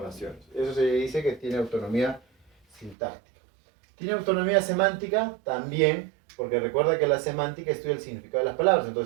Eso se dice que tiene autonomía sintáctica. ¿Tiene autonomía semántica? También, porque recuerda que la semántica estudia el significado de las palabras,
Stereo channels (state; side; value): drops out; left; at 3.0 s